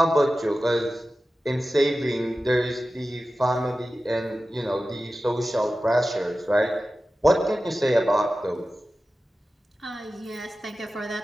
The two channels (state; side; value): normal; both; correlation 0.94